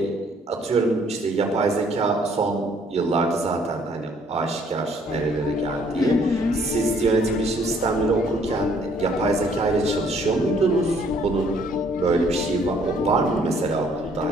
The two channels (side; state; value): both; normal; correlation 0.63